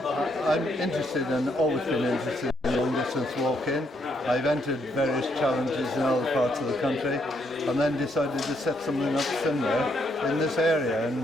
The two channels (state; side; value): normal; both; correlation 0.74